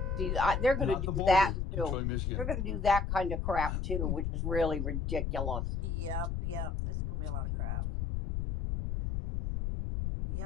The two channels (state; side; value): noise; left; rumble, 1 dB below the sound